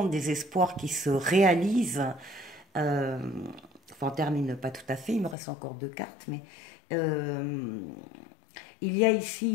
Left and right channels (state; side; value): drops out; right; at 5.4 s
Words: des espoirs qui se réalisent. Enfin, on termine pas tout à fait, il me reste encore 2 cartes, mais il y a